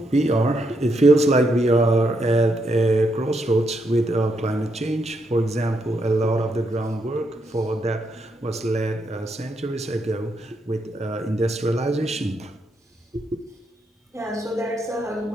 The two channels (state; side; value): normal; both; correlation 0.79